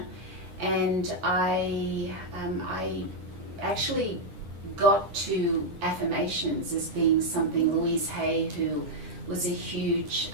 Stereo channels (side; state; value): left; late; 9.9 ms